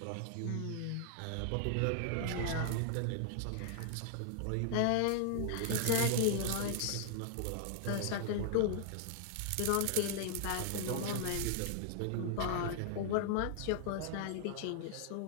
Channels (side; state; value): both; different; correlation 0.00